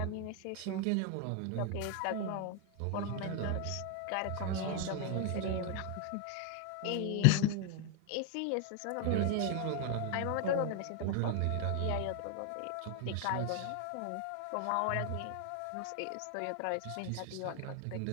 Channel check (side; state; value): both; different; correlation 0.01